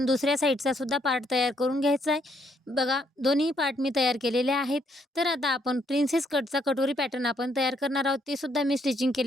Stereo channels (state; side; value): normal; both; correlation 0.72